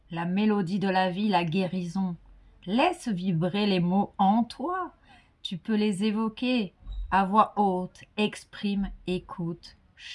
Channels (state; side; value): identical; both; correlation 1.00